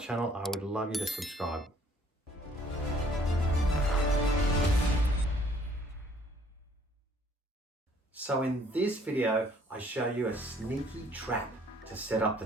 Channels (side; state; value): both; normal; correlation 0.60